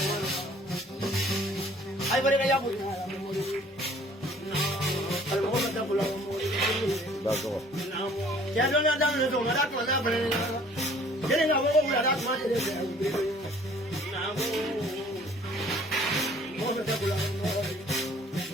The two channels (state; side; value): normal; both; correlation 0.55